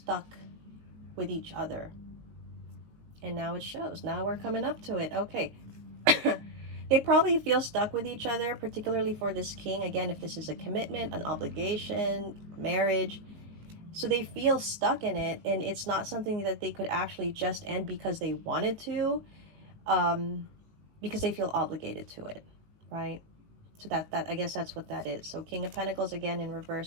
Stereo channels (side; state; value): left; late; 19 ms